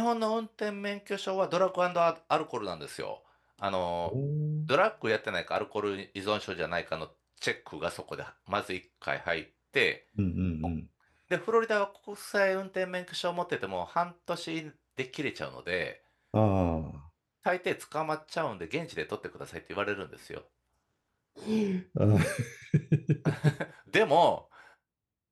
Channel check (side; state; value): both; identical; correlation 1.00